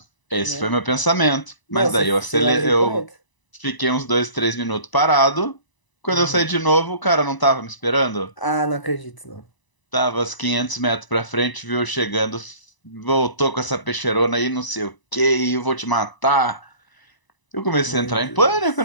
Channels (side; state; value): right; late; 1.0 ms